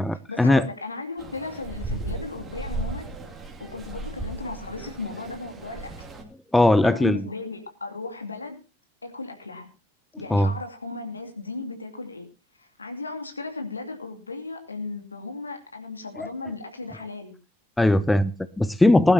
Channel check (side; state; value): both; normal; correlation 0.78